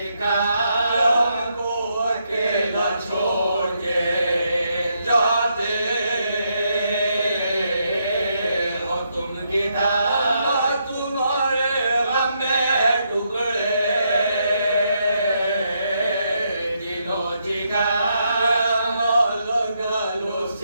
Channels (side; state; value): both; inverted; correlation -0.78